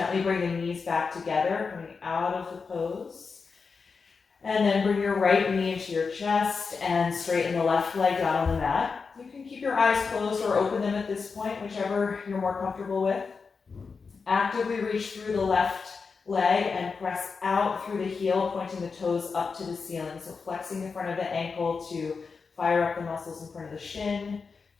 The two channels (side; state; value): right; quieter; 5.0 dB